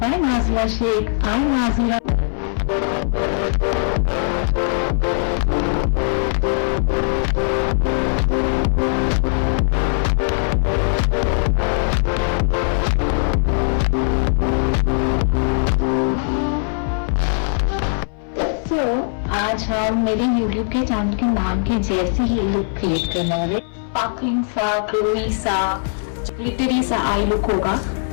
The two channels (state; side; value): silent; right; 61 dB below the other